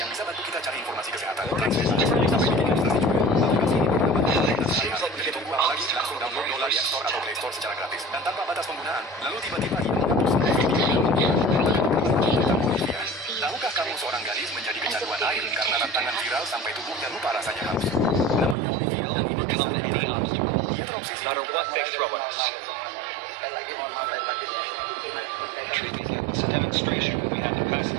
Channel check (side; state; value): left; drops out; at 18.6 s